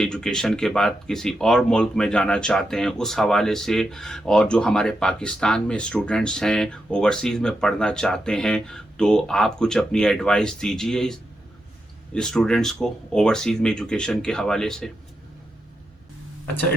एजुकेशन के बाद किसी और मुल्क में जाना चाहते हैं, उस हवाले से, और जो हमारे पाकिस्तान में स्टूडेंट्स हैं ओवरसीज़ में पढ़ना चाहते हैं, तो आप कुछ अपनी एडवाइस दीजिए स्टूडेंट्स को ओवरसीज़ में एजुकेशन के हवाले से। अच्छा,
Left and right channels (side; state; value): both; normal; correlation 0.86